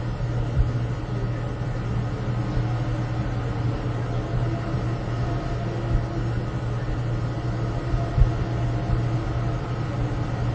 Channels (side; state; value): both; identical; correlation 1.00